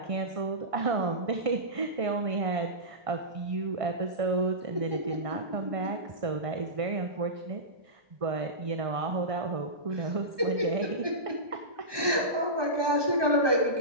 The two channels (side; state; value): left; late; 1.2 ms